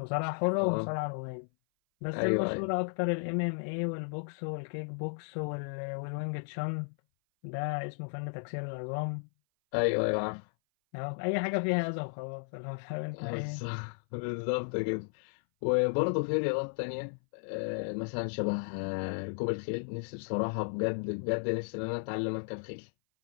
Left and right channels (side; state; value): right; silent; 55 dB below the other